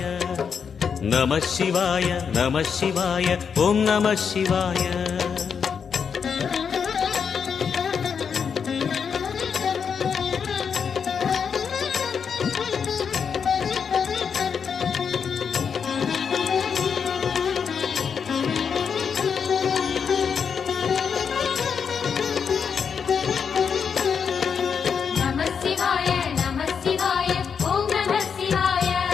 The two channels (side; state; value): right; quieter; 6.6 dB